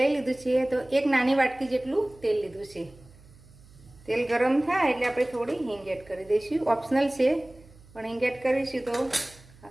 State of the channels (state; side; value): noise; right; hum, 24 dB below the sound